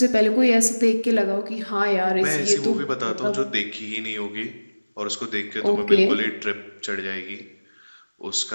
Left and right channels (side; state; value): both; inverted; correlation -1.00